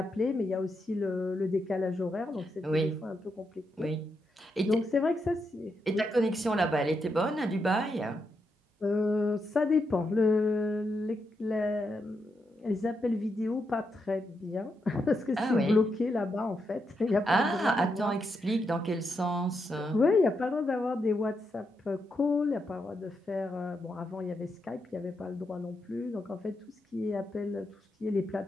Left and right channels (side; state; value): both; normal; correlation 0.83